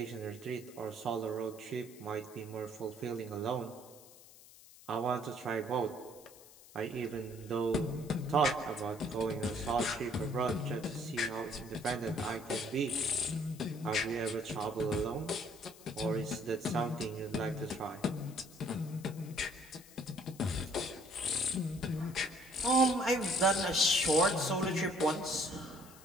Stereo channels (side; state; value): left; noise; hiss, 21 dB below the sound